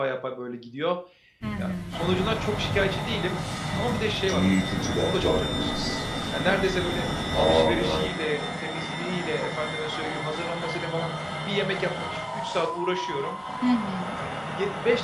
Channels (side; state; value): both; identical; correlation 1.00